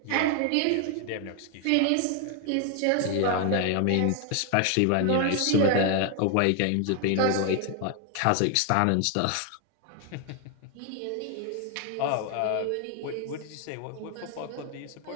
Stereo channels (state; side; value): different; both; correlation 0.00